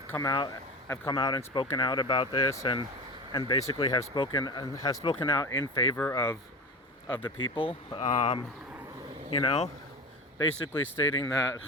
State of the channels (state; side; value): normal; both; correlation 0.28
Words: come out and spoken out about this, and basically have spoken out in favor of the people. Basically stating that,